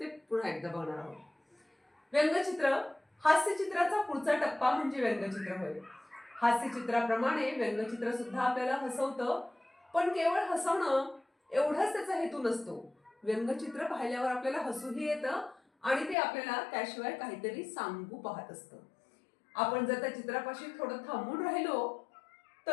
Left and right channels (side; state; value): right; drops out; at 16.2 s